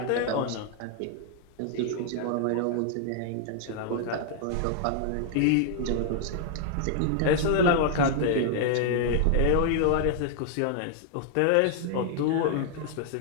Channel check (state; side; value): different; both; correlation 0.00